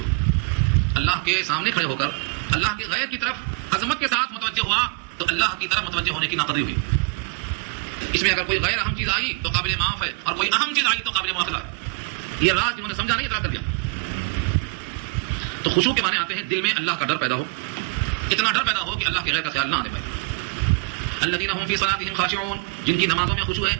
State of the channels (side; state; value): left; quieter; 30.9 dB